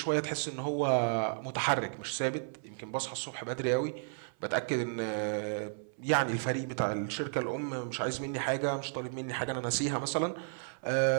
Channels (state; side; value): silent; left; 56 dB below the other